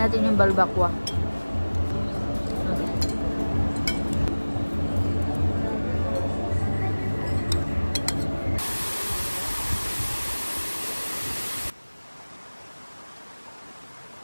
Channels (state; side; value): inverted; both; correlation -1.00